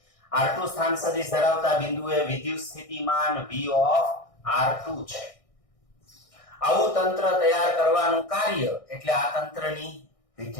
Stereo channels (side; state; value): right; late; 1.6 ms